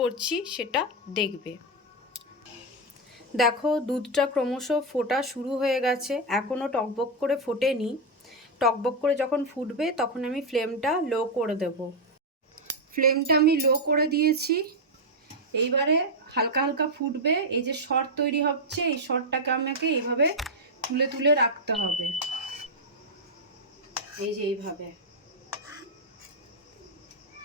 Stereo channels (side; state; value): both; normal; correlation 0.02